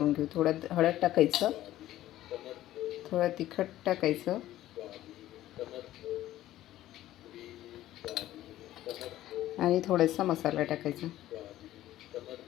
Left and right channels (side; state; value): right; quieter; 14.2 dB